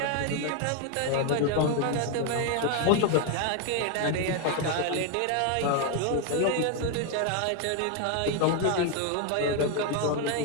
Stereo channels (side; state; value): both; different; correlation 0.01